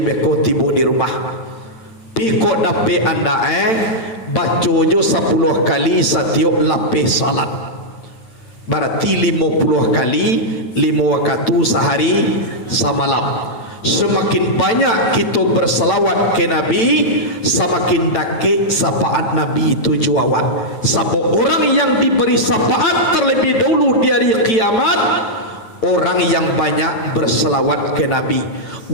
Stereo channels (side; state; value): right; late; 8.9 ms